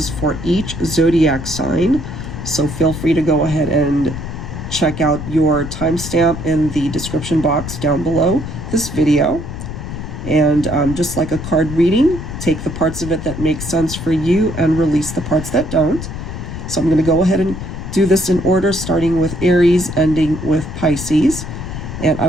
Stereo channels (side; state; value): left; noise; rumble, 8 dB below the sound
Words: for each zodiac sign. So feel free to go ahead and check out your timestamp in the description box down below this video. And just like a card reading, take the parts of it that make sense for you and release the parts that don't. So I'm going to go ahead and do this in order, starting with Aries, ending with Pisces. And I